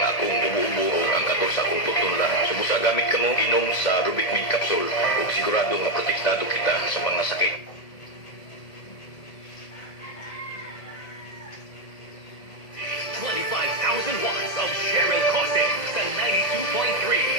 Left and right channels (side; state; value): right; late; 1.8 ms